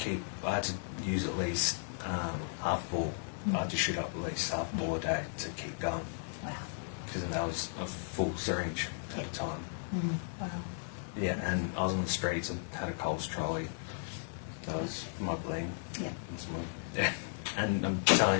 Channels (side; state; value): right; silent; digital silence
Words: I had to use at least half a ball. I had to shoot up at least half a ball a day to keep going. Wow. Because that was a full syringe at the time. Wow. Yeah, and I was on the streets. I had a Coles trolley. That was my bling. Yeah. And I'm telling